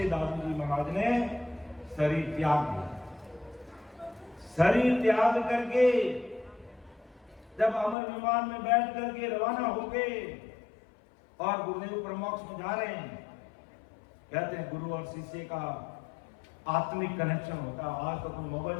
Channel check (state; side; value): drops out; right; at 8.0 s